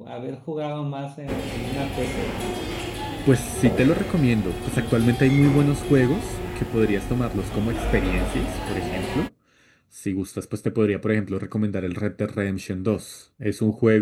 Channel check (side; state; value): both; identical; correlation 1.00